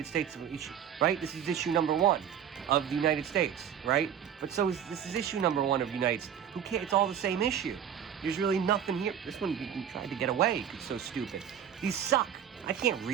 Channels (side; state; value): left; quieter; 9.0 dB